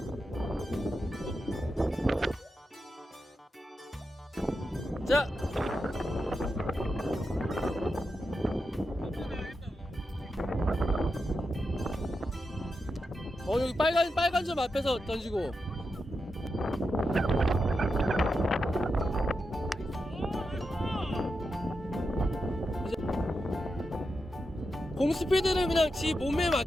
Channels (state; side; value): normal; both; correlation 0.88